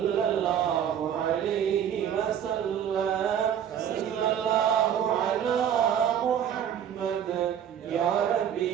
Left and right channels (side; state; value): left; quieter; 9.2 dB